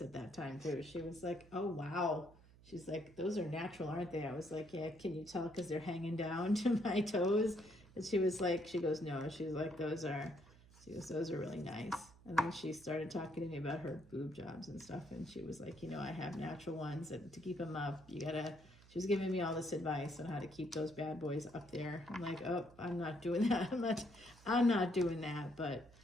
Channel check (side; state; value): right; noise; hum, 23 dB below the sound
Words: at that time too. She was like, oh, wow. She's like, those are natural, aren't they? I was like, yeah, can you tell because they're hanging down to my toes? And she was like, she goes, no. She's like, those are really nice. And then she started talking to me about her boob jobs and stuff. And she was like, you know, I have natural ones, and to keep them up, she was giving me all this advice on how to keep those bad boys up there. I'm like, oh, I'm not doing that. I'm not doing that. But